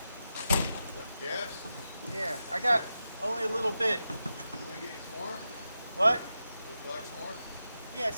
Gas? Yeah, I got only a little bit. Can we get you some more? What? Would you like some more? Yeah,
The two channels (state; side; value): inverted; both; correlation -0.89